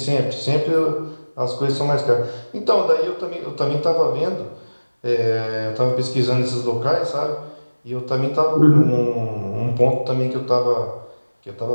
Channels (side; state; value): both; inverted; correlation -1.00